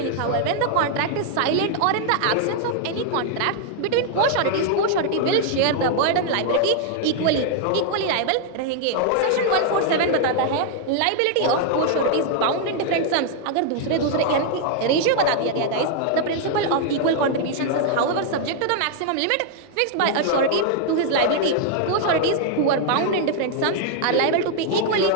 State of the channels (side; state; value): both; different; correlation 0.00